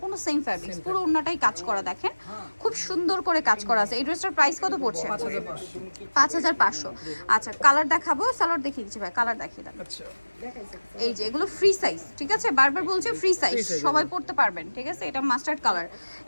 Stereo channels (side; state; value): both; inverted; correlation -1.00